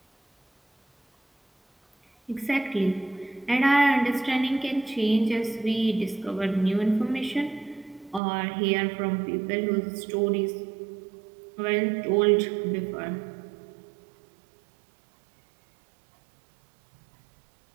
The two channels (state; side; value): drops out; left; at 8.2 s